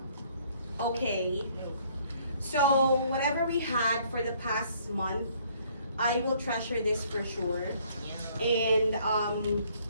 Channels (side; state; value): both; inverted; correlation -0.62